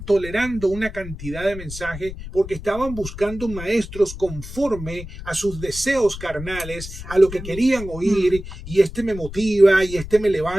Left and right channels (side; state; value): left; noise; rumble, 12 dB below the sound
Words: tolerando una cantidad de mensajes, porque estaban buscando maestros conforme a sus deseos carnales, a lo que querían oír, y este me motiva, y este me